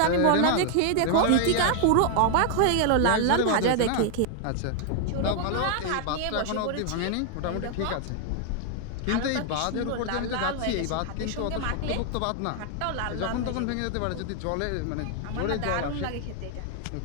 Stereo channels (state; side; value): different; both; correlation 0.00